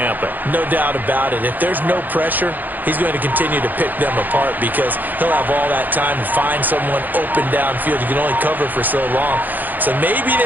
No doubt about it. If there's no pressure, he's going to continue to pick them apart because he'll have all that time to find someone open downfield. You can only cover for so long. So maybe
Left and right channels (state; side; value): late; left; 0.086 ms